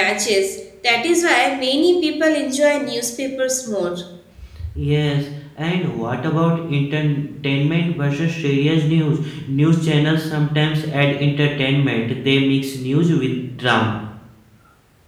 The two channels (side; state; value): both; identical; correlation 1.00